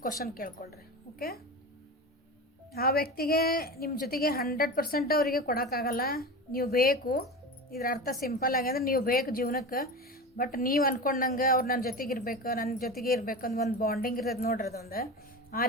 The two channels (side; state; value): both; normal; correlation 0.27